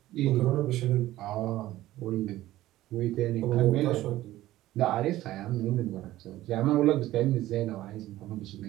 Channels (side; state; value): left; quieter; 15.4 dB